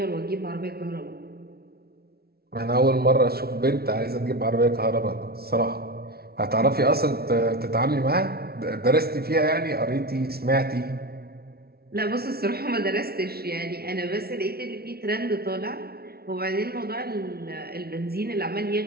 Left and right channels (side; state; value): left; late; 0.45 ms